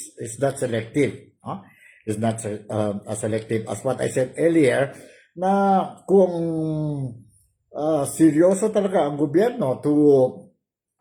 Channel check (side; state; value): both; identical; correlation 1.00